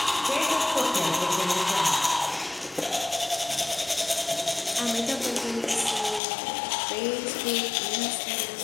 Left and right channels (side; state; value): right; drops out; at 6.2 s